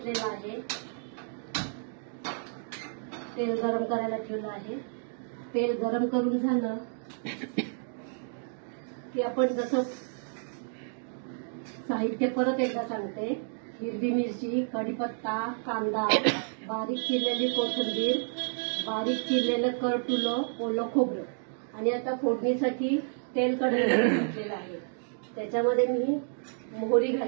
आहे, तेल गरम करायला ठेवलं आहे। तेल गरम करून झालं की आपण जसं साहित्य परत एकदा सांगते। हिरवी मिरची, कढीपत्ता, कांदा, बारीक चिरलेली कोथिंबीर, बारीक चिरलेलं करटुलं, ओलं खोबरं, आणि आता फोडणीसाठी तेल कढईमध्ये घातलेलं आहे। त्याच्यामध्ये मी मोहरी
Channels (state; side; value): silent; left; digital silence